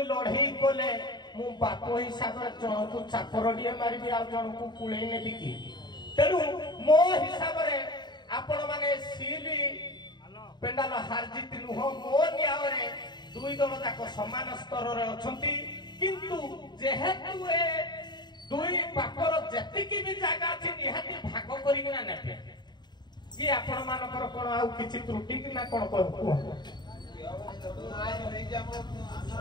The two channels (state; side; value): late; right; 0.21 ms